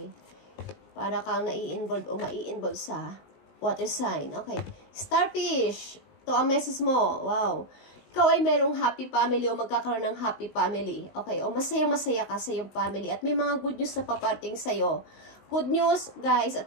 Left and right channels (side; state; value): right; late; 19 ms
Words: Para kang nai-involve o mai-involve sa water sign. Okay. Starfish. Ito ang message mo. Wow. Ikaw ay merong happy family o magkakaroon ng happy family. Okay. O masaya-masaya ka sa iyong family. At may mga good news na paparting sa'yo. Good news, guys,